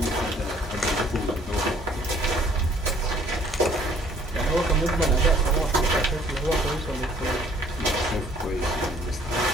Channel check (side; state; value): both; normal; correlation 0.59